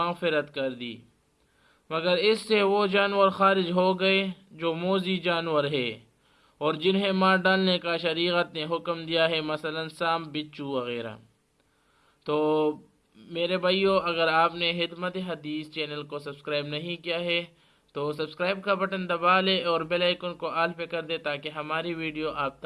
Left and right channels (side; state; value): both; identical; correlation 1.00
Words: کر دی، مگر اس سے وہ جانور خارج ہو گئے جو موذی جانور ہے اور جنہیں مار ڈالنے کا شریعت نے حکم دیا ہے، مثلا سانپ، بچھو وغیرہ۔ تو میرے بھائیو، اگر آپ نے خدمت حدیث چینل کو سبسکرائب نہیں کیا ہے تو سبسکرائب کا بٹن دبا لے اور بیل آئیکن کو آل پہ کر دے تاکہ ہماری ویڈیو آپ